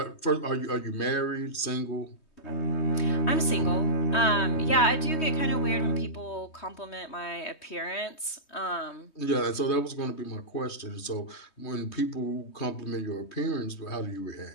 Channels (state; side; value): late; right; 3.2 ms